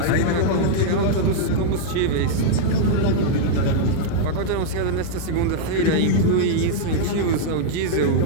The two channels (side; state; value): both; different; correlation -0.01